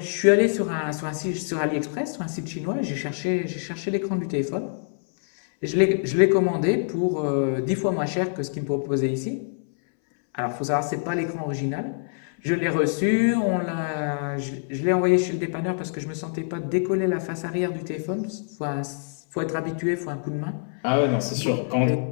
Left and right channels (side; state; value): right; silent; 62 dB below the other